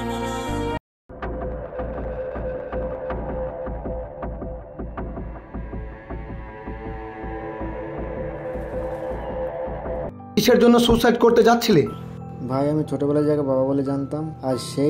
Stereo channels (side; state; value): both; identical; correlation 1.00